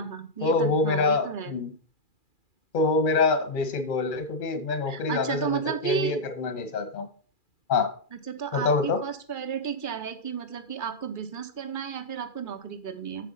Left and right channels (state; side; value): late; right; 2.4 ms